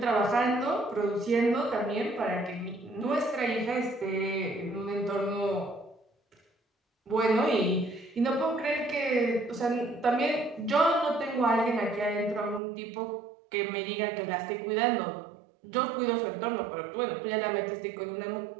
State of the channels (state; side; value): drops out; left; at 12.6 s